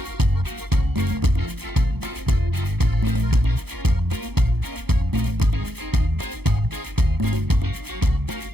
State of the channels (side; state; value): left; late; 0.97 ms